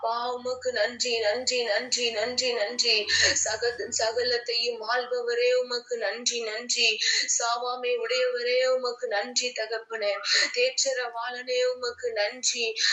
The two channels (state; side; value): identical; both; correlation 1.00